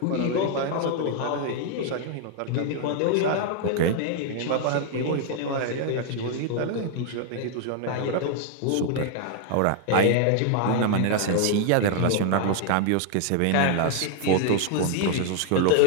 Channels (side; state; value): both; different; correlation 0.00